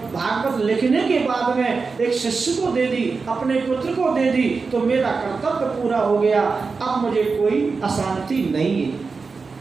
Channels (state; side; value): quieter; left; 4.6 dB